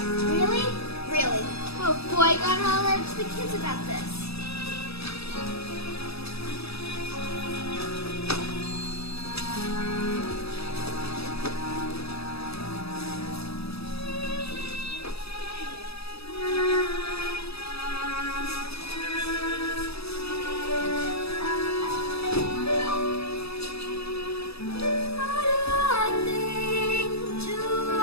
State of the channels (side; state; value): right; late; 0.78 ms